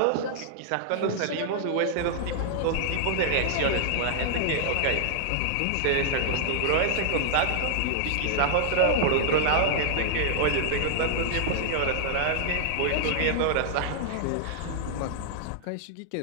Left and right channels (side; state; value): both; different; correlation -0.01